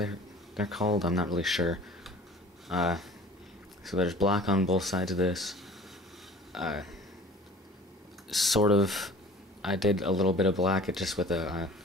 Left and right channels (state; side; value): normal; both; correlation 0.45